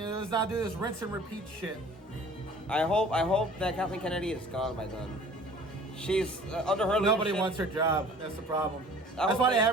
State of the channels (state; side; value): normal; both; correlation 0.48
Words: not do this rinse and repeat shit. I hope that Kathleen Kennedy is gone by then. She's under her leadership. Nobody wants her job. That's the problem. That's why they